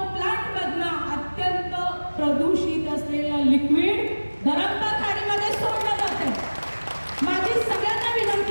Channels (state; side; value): inverted; both; correlation -1.00